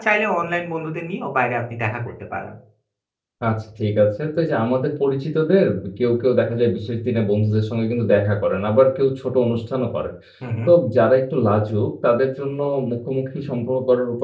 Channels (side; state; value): both; identical; correlation 1.00